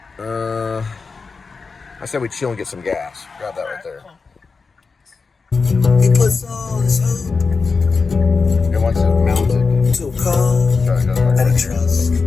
I said we chill and get some gas. Grab that right there. He puts all his hope It wants it mounted. to a call that he trusts.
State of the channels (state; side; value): quieter; right; 4.6 dB